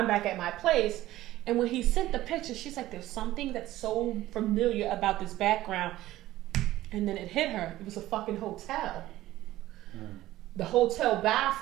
back at my place." And when he sent the picture, she's like, "There's something that's so familiar about this background." And then it hit her. It was a fucking hotel. The hotel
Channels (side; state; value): left; quieter; 15.5 dB